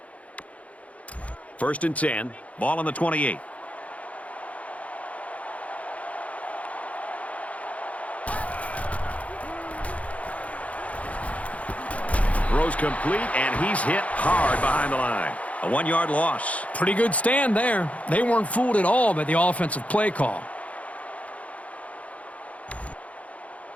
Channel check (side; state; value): right; late; 0.066 ms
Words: First and 10. Ball on the 28. Throws complete, and he's hit hard behind the line. A 1-yard loss. Pretty good stand there. They weren't fooled at all by the offensive play call.